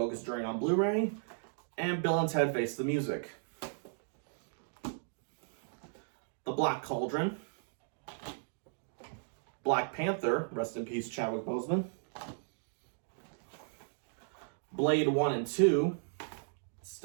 Journey on Blu-ray, and Bill and Ted Face the Music. The Black Cauldron, Black Panther, rest in peace Chadwick Boseman, Blade 1 and 2,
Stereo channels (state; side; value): silent; left; digital silence